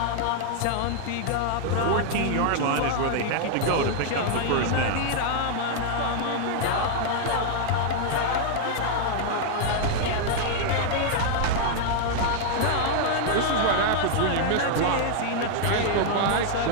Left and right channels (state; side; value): different; both; correlation -0.01